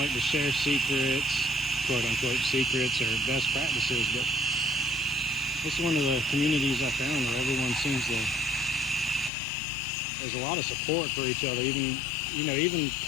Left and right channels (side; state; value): right; drops out; at 9.3 s